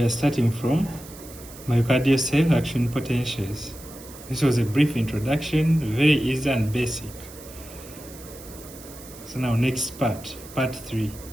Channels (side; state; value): right; noise; hiss, 18 dB below the sound